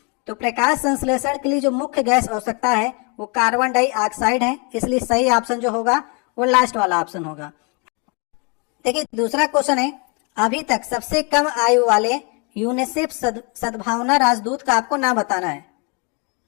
तो प्रकाश संश्लेषण के लिए जो मुख्य गैस आवश्यकता है वो कार्बन डाइऑक्साइड है, इसलिए सही ऑप्शन जो होगा वो लास्ट वाला ऑप्शन होगा। देखिए दूसरा क्वेश्चन है, अभी तक सबसे कम आयु वाले यूनिसेफ सद्भावना राजदूत का आपको नाम बताना है।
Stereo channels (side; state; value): right; quieter; 33.8 dB